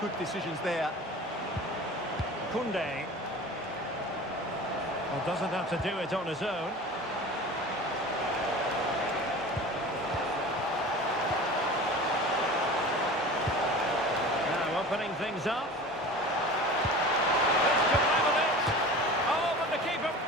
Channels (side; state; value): both; normal; correlation 0.37